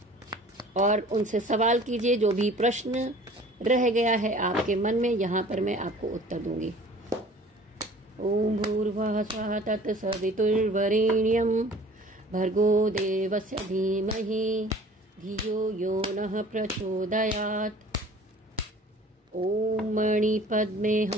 और उनसे सवाल कीजिए। जो भी प्रश्न रह गया है आपके मन में, यहाँ पर मैं आपको उत्तर दूंगी। ओम भूर्भुवः स्वः तत्सवितुर्वरेण्यं भर्गो देवस्य धीमहि धियो यो नः प्रचोदयात्। ओम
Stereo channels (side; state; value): both; normal; correlation 0.48